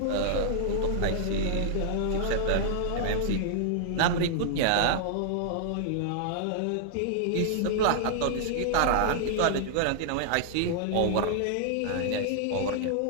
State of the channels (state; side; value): different; both; correlation -0.01